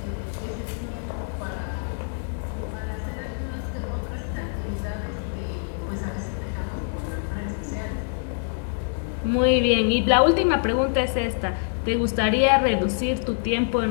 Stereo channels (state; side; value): silent; right; digital silence